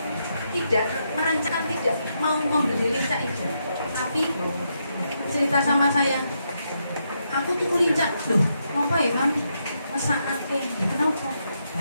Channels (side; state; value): both; inverted; correlation -0.81